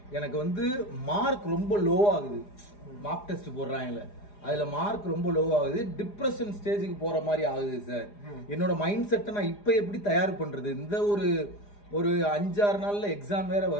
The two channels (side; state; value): right; late; 4.9 ms